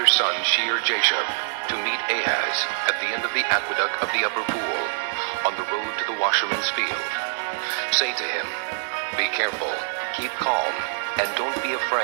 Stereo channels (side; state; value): left; silent; digital silence